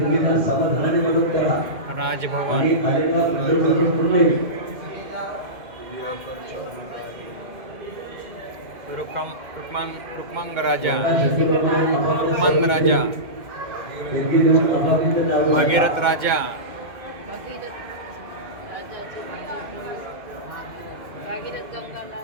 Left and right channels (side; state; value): left; late; 2.2 ms